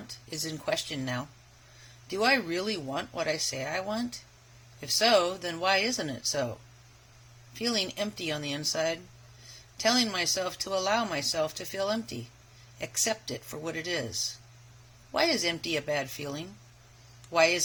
is in question now. Do I really want what I say I want? If so, then why isn't it so? Feeling empty on the inside. Telling myself to allow myself to feel empty. Accept it for what it is. Why is empty a bad feeling? Why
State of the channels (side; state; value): both; identical; correlation 1.00